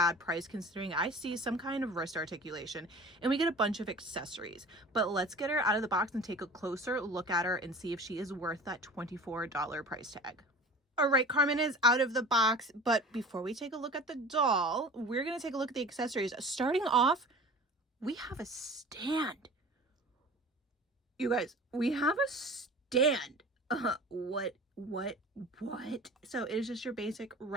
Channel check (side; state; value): both; normal; correlation 0.40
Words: price considering I see some kind of wrist articulation, and we get a bunch of accessories. But let's get her out of the box and take a closer look at her and see if she is worth that $24 price tag. All right, Carmen is out of the box, but before we take a look at the doll, we're gonna take a look at the accessories. Starting off, we have a stand. You guys, we have a stand. What? So it is just your basic